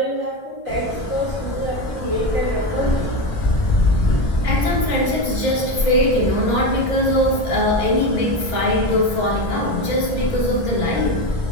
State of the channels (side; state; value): right; late; 1.5 ms